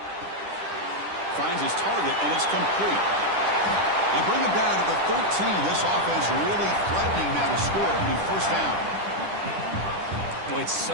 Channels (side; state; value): left; late; 10 ms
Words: Finds his target, and it's complete. They bring him down to the 13. This offense really threatening now to score. It'll be 1st down. Boy, it's